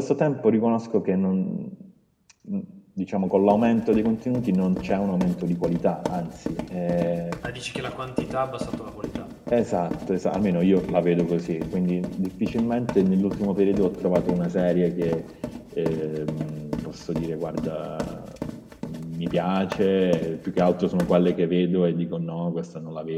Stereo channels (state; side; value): identical; both; correlation 1.00